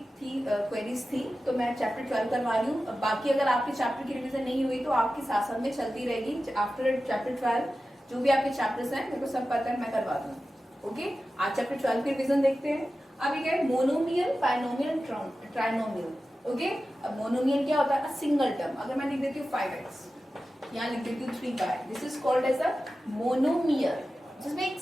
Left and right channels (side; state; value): both; normal; correlation 0.94